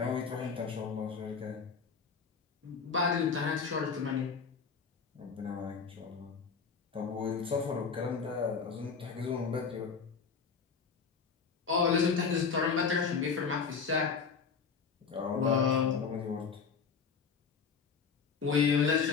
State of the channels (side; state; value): right; quieter; 5.7 dB